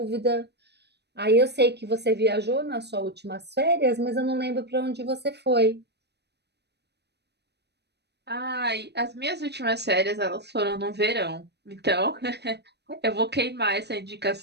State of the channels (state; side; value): late; left; 0.49 ms